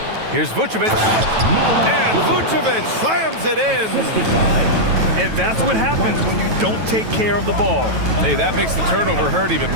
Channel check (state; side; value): late; left; 9.2 ms